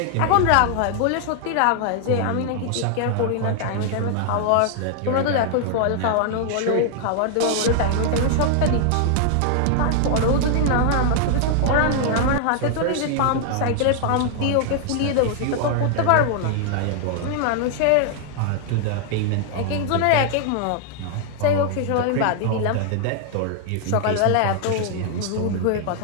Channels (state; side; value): different; both; correlation 0.00